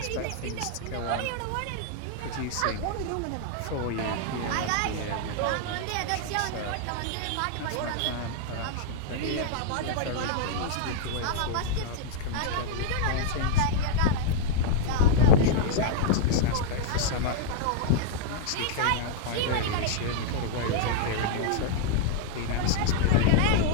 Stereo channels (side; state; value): both; different; correlation -0.01